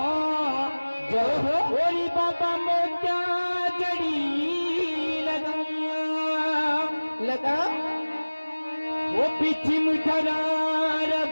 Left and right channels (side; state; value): both; inverted; correlation -1.00